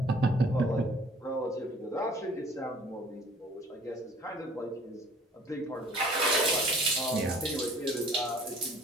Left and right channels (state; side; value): normal; both; correlation 0.53